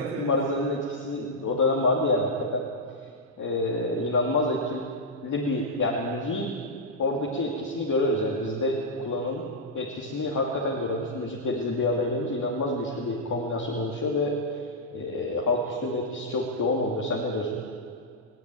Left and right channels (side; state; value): both; normal; correlation -0.07